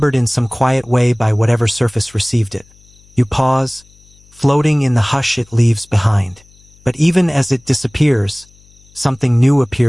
in some quiet way by whatever surface received it. You pause, floating in the hush it leaves behind. But even as it disappears, something new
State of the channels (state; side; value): noise; left; hum, 29 dB below the sound